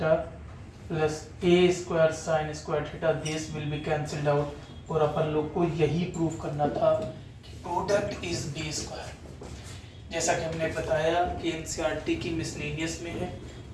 plus A square sine square theta, this will be cancelled out, और अपन लोग को यही प्रूव करना था कि product is B square. जैसा कि हमने बताया कि एनसीईआरटी की मिसलेनियस में है,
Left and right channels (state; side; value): identical; both; correlation 1.00